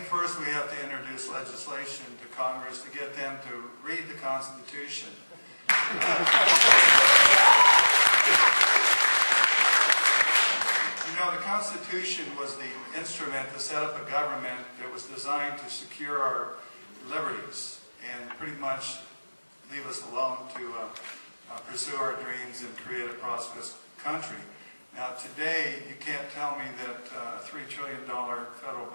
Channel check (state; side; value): inverted; both; correlation -1.00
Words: first we have to introduce legislation to Congress to get them to read the Constitution. You know, the Constitution was the instrument to set up a government that was designed to secure our liberties and pretty much leave us alone to pursue our dreams and create a prosperous country. Now today, you can't tell me that a $3 trillion federal